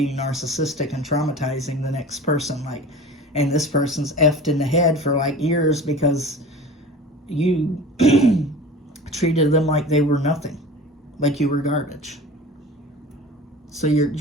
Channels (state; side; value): normal; both; correlation 0.38